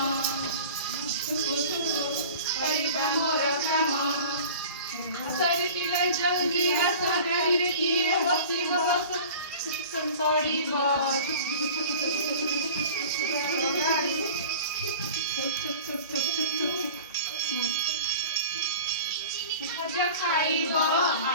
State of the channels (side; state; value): both; inverted; correlation -0.40